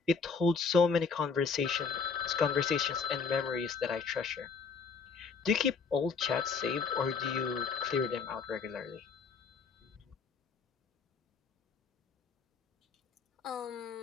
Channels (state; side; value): quieter; right; 5.3 dB